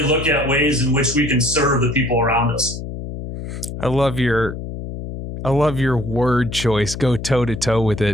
look at ways in which we can serve the people around us. I love your word choice. Go toe to toe with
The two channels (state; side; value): noise; left; hum, 8 dB below the sound